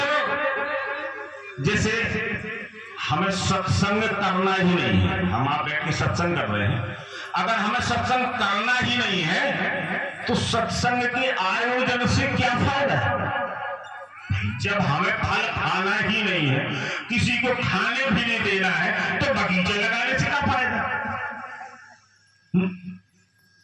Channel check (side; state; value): both; identical; correlation 1.00